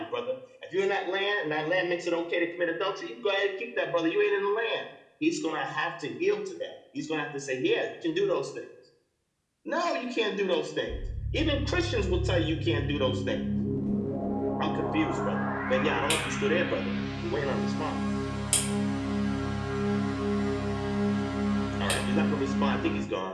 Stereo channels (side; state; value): both; identical; correlation 1.00